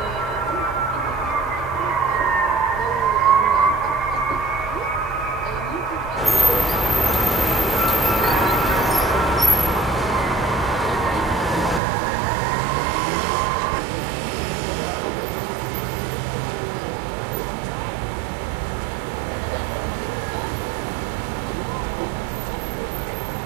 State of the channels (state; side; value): drops out; left; at 11.8 s